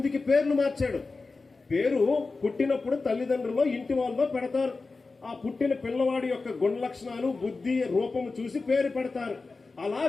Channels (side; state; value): right; quieter; 3.9 dB